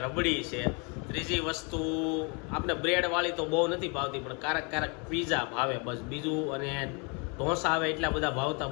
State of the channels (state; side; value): quieter; right; 33.1 dB